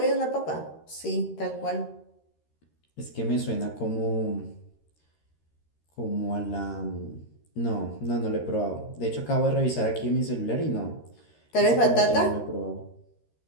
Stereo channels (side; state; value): right; late; 13 ms